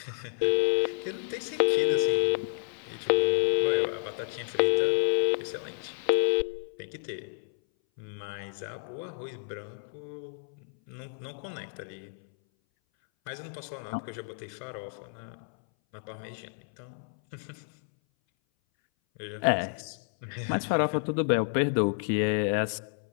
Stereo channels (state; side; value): silent; right; 58 dB below the other